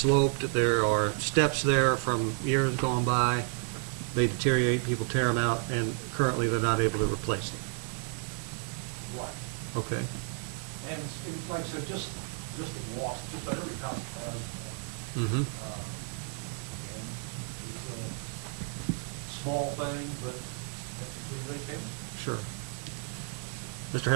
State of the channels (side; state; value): left; silent; 57 dB below the other